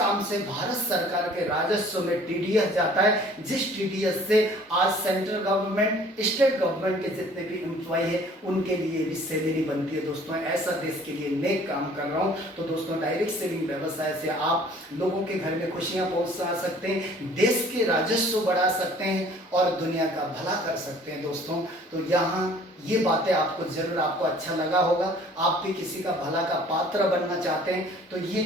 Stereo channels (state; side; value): normal; both; correlation 0.53